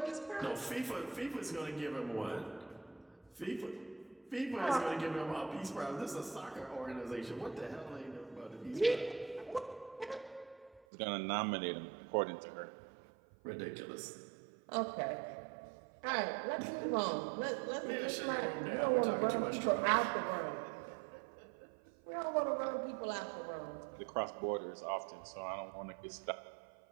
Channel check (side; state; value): left; drops out; at 10.8 s